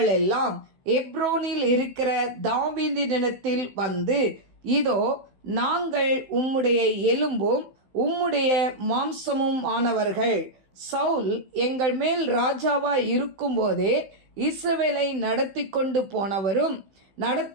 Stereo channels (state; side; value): late; left; 15 ms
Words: எல்லாம் எப்ரோனில் இருக்கிற தாவீதினிடத்தில் வந்து, இதோ நாங்கள் உம்முடைய எலும்பும் உம்முடைய மாம்சமும் ஆனவர்கள். சவுல் எங்கள் மேல் ராஜாவாய் இருக்கும்போதே இஸ்ரவேலை நடத்தி கொண்டு போனவரும்